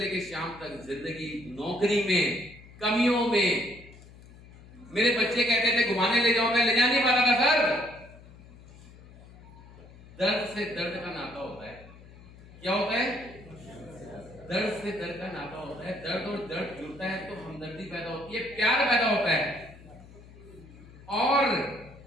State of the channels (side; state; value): left; noise; hum, 20 dB below the sound